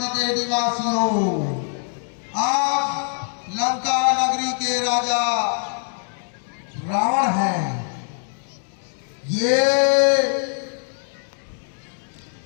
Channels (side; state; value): right; silent; 63 dB below the other